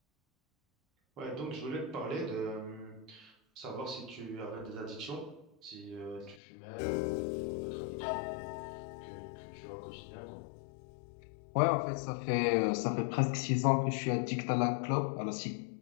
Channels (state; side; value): drops out; right; at 6.4 s